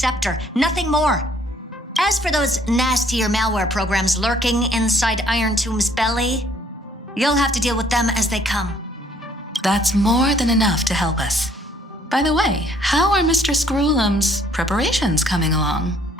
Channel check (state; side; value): normal; both; correlation 0.63